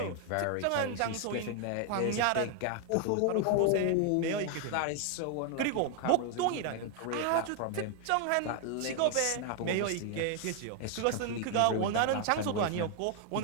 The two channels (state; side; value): different; both; correlation 0.00